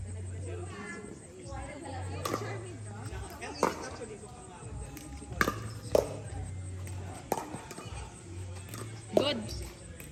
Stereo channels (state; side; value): identical; both; correlation 1.00